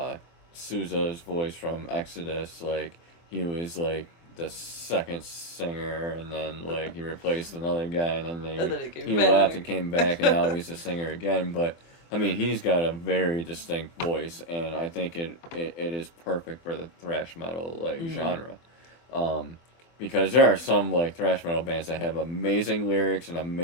Sousa's voice from Exodus. Like he was like the second singer, and then like he replaced another guy, and then And then it came he left and back. came back, and now he's the singer again. But I mean, he's got a very distinct voice, and I think it is perfect for the thrash metal like Mm. genre. Um, because there are some like thrash metal bands that have amazing lyrics and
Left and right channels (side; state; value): right; late; 24 ms